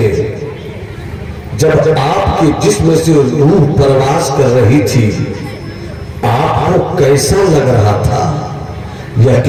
جب آپ کے جسم سے روح پرواز کر رہی تھی، آپ کو کیسا لگ رہا تھا؟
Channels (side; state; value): both; identical; correlation 1.00